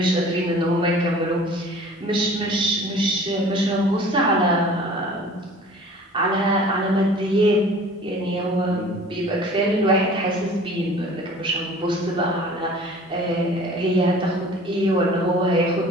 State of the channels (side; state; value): both; normal; correlation 0.46